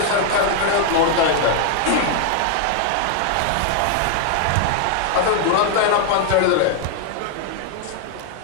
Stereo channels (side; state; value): both; different; correlation 0.00